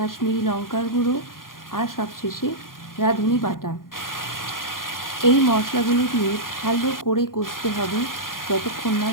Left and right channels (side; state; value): right; late; 0.91 ms